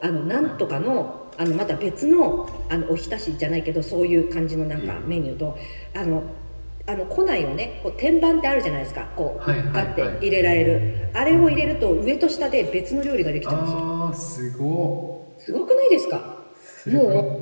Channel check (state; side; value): inverted; both; correlation -1.00